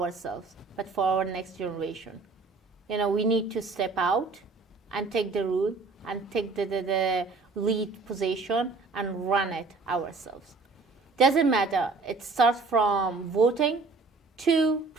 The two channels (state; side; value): quieter; left; 4.0 dB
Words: but for our next generation, we need to step out and take the rule and take the lead position and run it ourselves. Doesn't matter. It starts from voting to